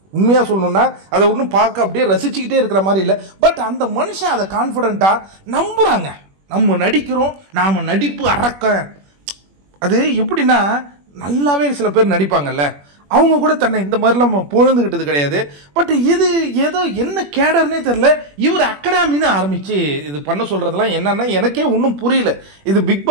உண்மையாக சொல்லணும்னா அதை ஒன்றும் பார்க்க அப்படியே ரசிச்சுக்கிட்டே இருக்கிற மாதிரி இல்லை. பட் அந்த மனுஷன் அதை கான்ஃபிடென்ட்டாக நம்புகிறாங்க. நம்ம நடிக்கிறோம், நாம் நடிப்பு அறக்க. அது எப்படின்னா நல்லாவே சில பேர் நடிப்பாங்கல்ல, அவங்க கூட தன்னை இந்த மாதிரிலாம் பொழுதுகிட்டது கிடையாது. பட் இது ஏதோ என்ன கேடர்னே தெரில, இவர் அகாடமின்னு ஆரம்பித்து இது பண்ண சொல்கிறதுலாம் என்னன்னா எனக்கே ஒன்றும் புரியல. இது பிக்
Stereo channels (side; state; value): left; late; 21 ms